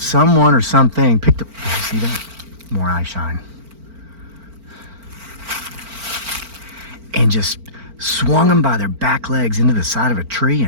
or something picked up. Did you see that? More eye shine. And just swung them by their back legs into the side of a tree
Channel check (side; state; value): left; late; 4.4 ms